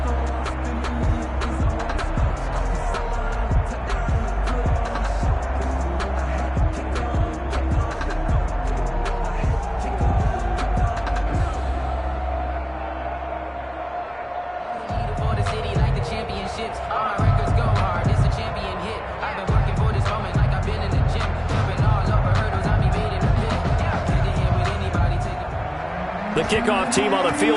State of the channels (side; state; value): both; identical; correlation 1.00